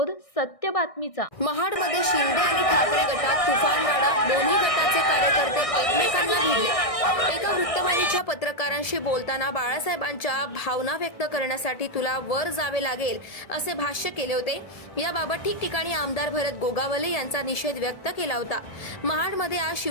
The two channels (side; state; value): right; late; 1.6 ms